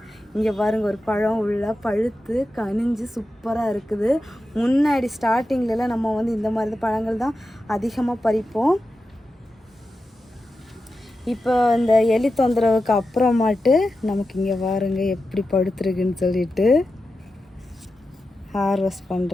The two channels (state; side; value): normal; both; correlation 0.91